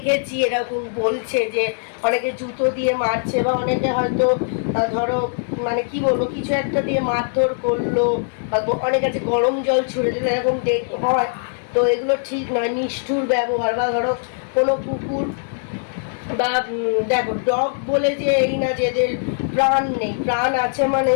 এরকম বলছে যে অনেকে জুতো দিয়ে মারছে, বা অনেকে হয়তো ধরো মানে কি বলবো কিছু একটা দিয়ে মারধর করলো, বা অনেক আছে গরম জল ছুঁড়ে দিল, এরকম হয়। তো এগুলো ঠিক নয়, নিষ্ঠুর ব্যবহার। বা ধরো কোনো কুকুর বা দেখো ডগ বলে যে এই না যে এদের প্রাণ নেই, প্রাণ আছে মানে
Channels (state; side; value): silent; right; digital silence